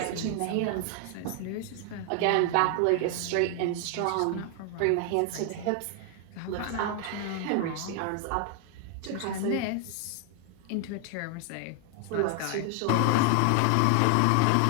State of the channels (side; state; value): both; different; correlation 0.00